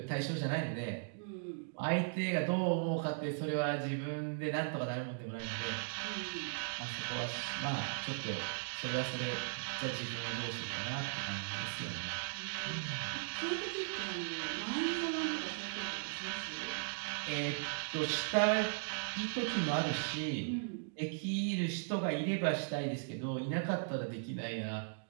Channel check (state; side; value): silent; left; digital silence